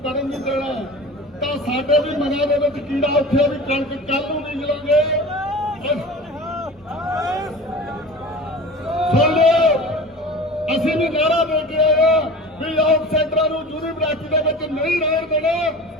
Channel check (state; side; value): normal; both; correlation 0.36